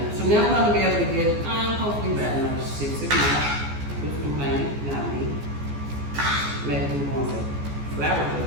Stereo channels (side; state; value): left; late; 14 ms